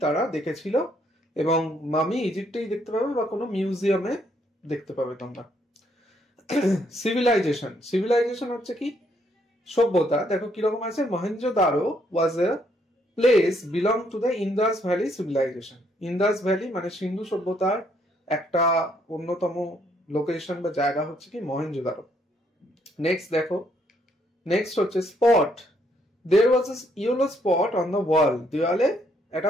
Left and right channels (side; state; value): both; normal; correlation 0.71